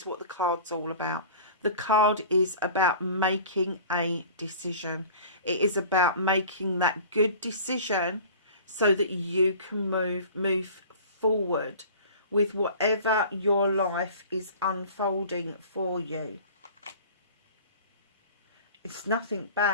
what the card's all about. The card is about making a decision. It is about making that good decision so that you can move forward with whatever your life is unfolding for you. It's nothing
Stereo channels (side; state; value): both; inverted; correlation -0.42